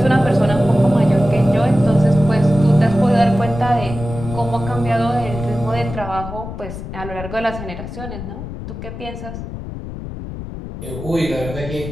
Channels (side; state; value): left; noise; rumble, 9 dB below the sound